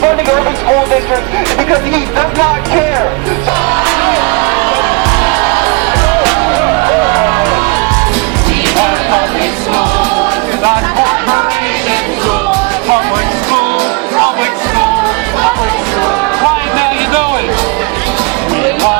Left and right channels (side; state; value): left; quieter; 29.7 dB